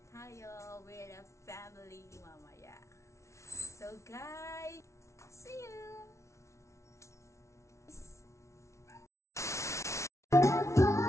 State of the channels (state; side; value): late; right; 0.14 ms